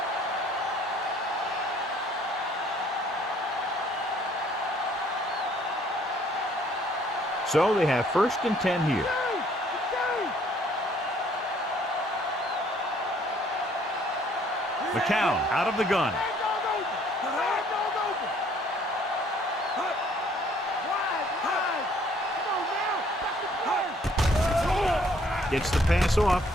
So they have 1st and 10 here. McCown out of the gun. Gets the pass off.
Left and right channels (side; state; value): both; normal; correlation 0.61